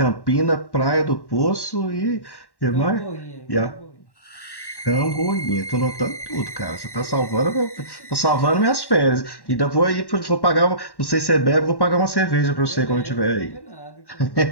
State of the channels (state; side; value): late; right; 1.1 ms